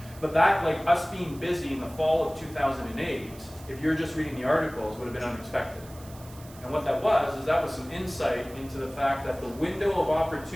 But that, like us being busy in the fall of 2008, if you're just reading the articles, would have been unexpected. And what that was, is that was some insight into the fact that the window of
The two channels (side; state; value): right; noise; hiss, 21 dB below the sound